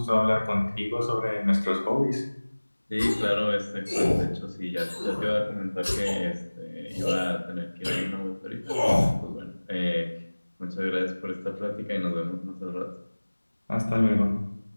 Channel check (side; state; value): both; inverted; correlation -1.00